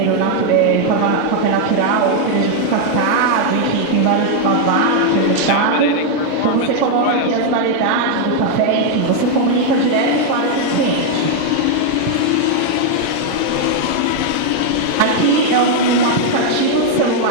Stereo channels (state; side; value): different; both; correlation 0.00